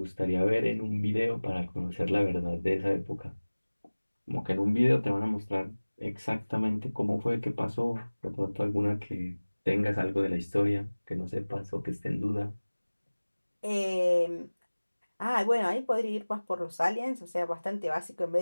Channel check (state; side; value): inverted; both; correlation -1.00